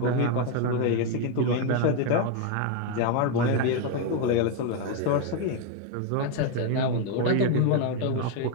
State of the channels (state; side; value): different; both; correlation 0.01